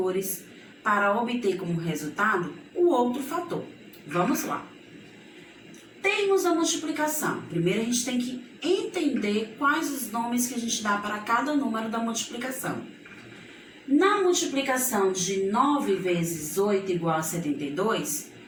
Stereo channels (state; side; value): identical; both; correlation 1.00